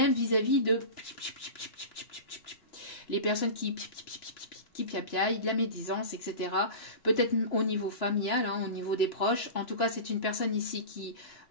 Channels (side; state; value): right; late; 3.0 ms